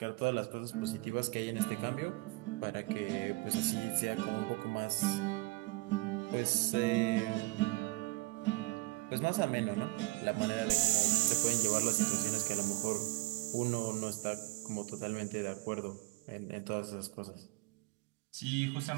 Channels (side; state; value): left; quieter; 23.1 dB